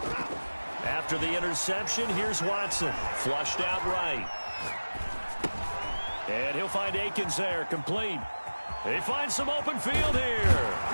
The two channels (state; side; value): inverted; both; correlation -1.00